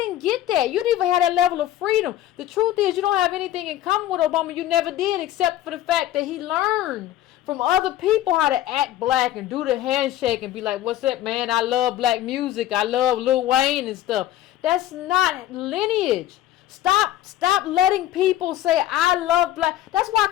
get that. You didn't even have that level of freedom. The truth is you don't have anything in common with Obama. You never did, except for the fact that he learned from other people how to act black and do the handshake and be like, what's up, man? I love black music. I love Lil Wayne and stuff. That's not lineage. Stop letting people say, I love black. That's why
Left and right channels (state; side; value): quieter; right; 13.1 dB